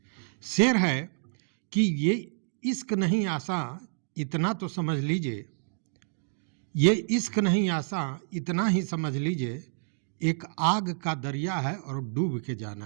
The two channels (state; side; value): silent; left; digital silence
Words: शेर है कि ये इश्क नहीं आसान इतना तो समझ लीजिए, ये इश्क नहीं आसान इतना ही समझ लीजिए, एक आग का दरिया है और डूब के जाना